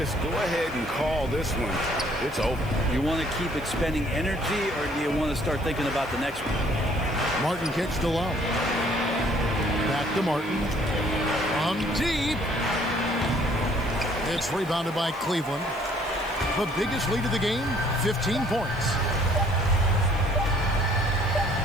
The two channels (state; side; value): noise; left; hiss, 24 dB below the sound